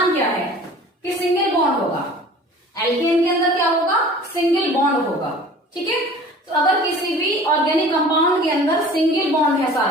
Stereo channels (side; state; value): both; normal; correlation 0.45